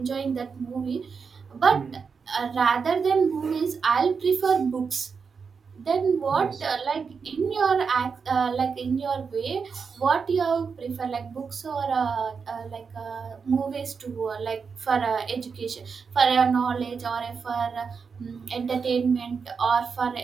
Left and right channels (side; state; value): left; quieter; 5.6 dB